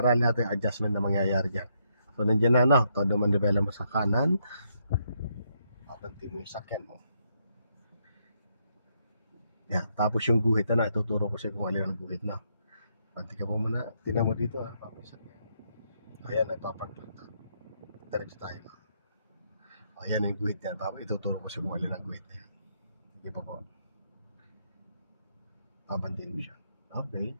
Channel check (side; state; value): both; inverted; correlation -0.76